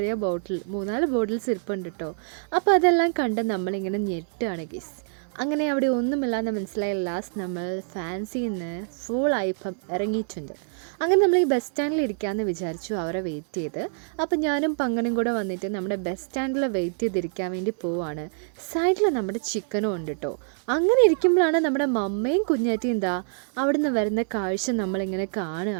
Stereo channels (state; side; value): silent; left; 61 dB below the other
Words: ബോട്ടിൽ 3-4 ബോട്ടിൽസ് ഇരിപ്പുണ്ട് കേട്ടോ. അപ്പോൾ അതെല്ലാം കണ്ട് നമ്മളിങ്ങനെ ഞെട്ടുകയാണ് ഗീസ്. അങ്ങനെ അവിടെ ഒന്നുമില്ലാന്ന് മനസ്സിലായ ലാസ്റ്റ് നമ്മൾ ഫാൻസിയിൽ നിന്ന് ഫുൾ ആയിപ്പം ഇറങ്ങിയിട്ടുണ്ട്. അങ്ങനെ നമ്മൾ ഈ ബസ് സ്റ്റാൻഡിൽ ഇരിക്കാമെന്ന് വിചാരിച്ചു, അവരെ വെയിറ്റ് ചെയ്ത്. അപ്പോൾ ഞാനും പങ്കനും കൂടെ വന്നിട്ട് നമ്മുടെ ബസ് സ്റ്റാൻഡിൽ വെയിറ്റ് ചെയ്തിരിക്കാൻ വേണ്ടി പോവാണ്. സൈഡിൽ നമ്മുടെ ചിക്കനും ഉണ്ട് കേട്ടോ. അങ്ങനെ ഇരിക്കുമ്പോഴാണ് നമ്മുടെ മമ്മയും കുഞ്ഞാറ്റിയും എന്താ അവിടെ നിന്ന് വരുന്ന കാഴ്ച നമ്മളിങ്ങനെ